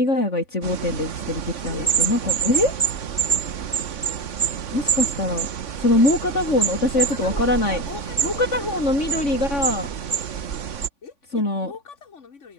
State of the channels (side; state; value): right; late; 3.5 ms